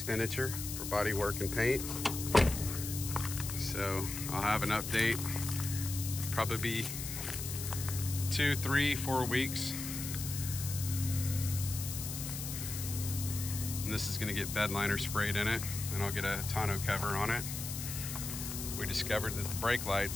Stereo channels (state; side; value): noise; left; hiss, 6 dB below the sound